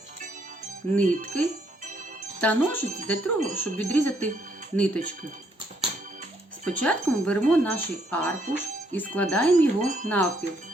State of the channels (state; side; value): normal; both; correlation 0.70